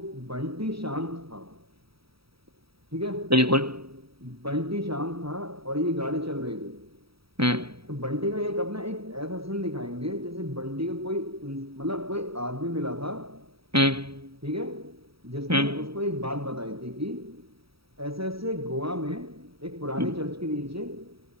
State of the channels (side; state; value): left; late; 0.76 ms